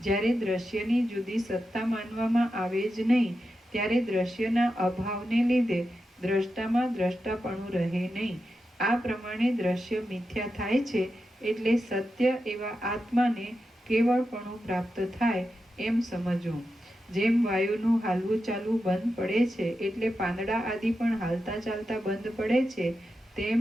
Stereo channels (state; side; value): normal; both; correlation 0.89